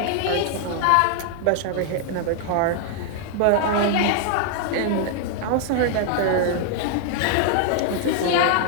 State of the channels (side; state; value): both; different; correlation 0.00